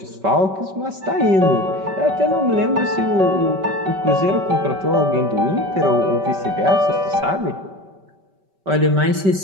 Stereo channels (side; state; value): left; late; 5.2 ms